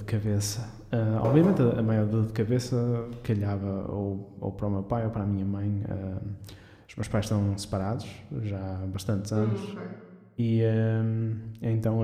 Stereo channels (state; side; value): identical; both; correlation 1.00